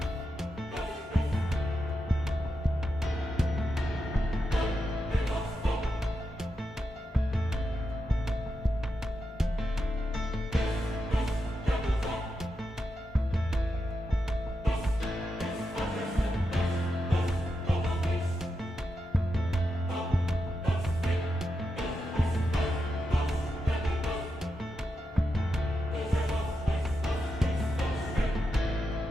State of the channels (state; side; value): normal; both; correlation 0.87